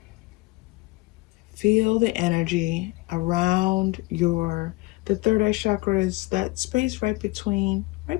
Feel the energy around the third eye chakra is that space right between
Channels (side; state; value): right; quieter; 22.7 dB